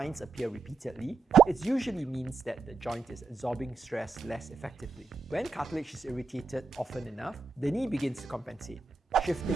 appear repeatedly, it usually means that the joint is absorbing stress less effectively. When cartilage is irritated often enough, the knee begins to compensate,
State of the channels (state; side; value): quieter; left; 4.2 dB